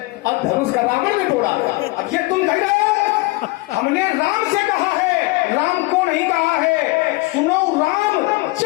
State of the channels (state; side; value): quieter; right; 23.2 dB